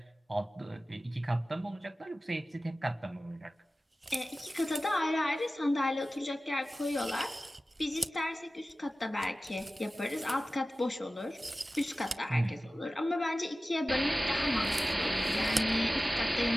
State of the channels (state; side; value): normal; both; correlation 0.96